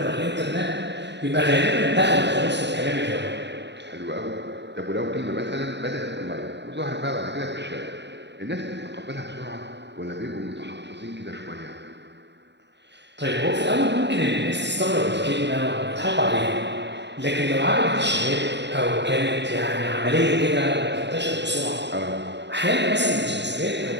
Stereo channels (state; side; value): late; left; 0.51 ms